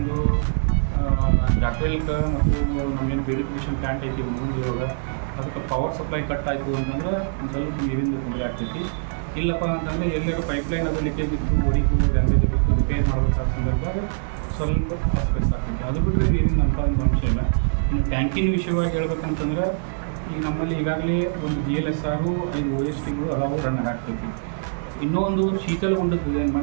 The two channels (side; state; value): left; silent; digital silence